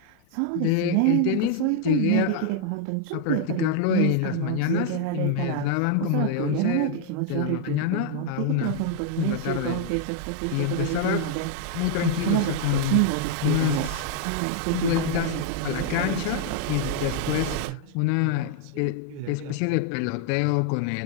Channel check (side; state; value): both; different; correlation 0.00